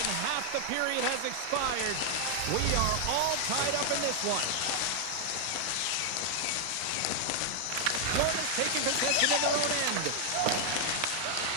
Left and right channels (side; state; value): both; different; correlation 0.00